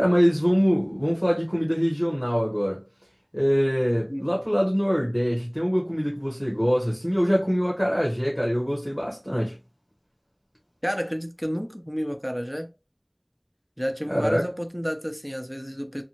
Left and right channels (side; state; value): both; identical; correlation 1.00